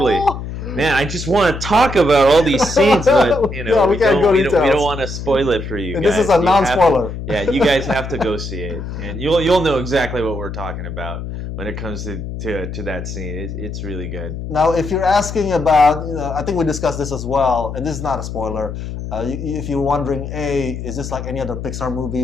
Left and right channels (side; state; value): left; noise; hum, 7 dB below the sound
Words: Man, I just want to talk about all these scenes, but we don't want to spoil it for you guys. This is a non-spoiler. You guys have to go see it, and you'll know exactly what we're talking about when it comes to that scene. It's really good. Now, if you're asking about, I think we discussed this as well, and this is not a spoiler. If you're wondering, is this like any other Pixar movie